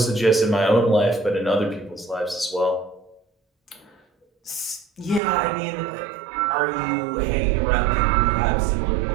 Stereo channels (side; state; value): left; drops out; at 5.2 s